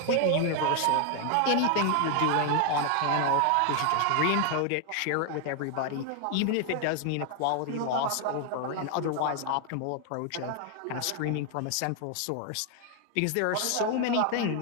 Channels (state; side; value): different; both; correlation 0.00